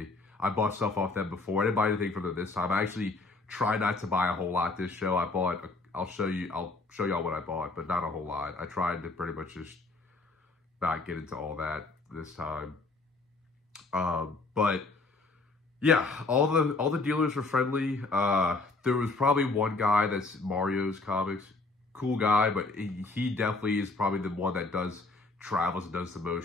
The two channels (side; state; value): right; quieter; 3.5 dB